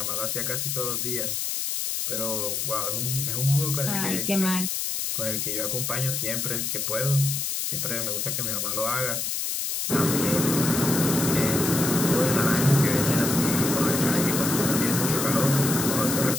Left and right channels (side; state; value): left; noise; hiss, 1 dB below the sound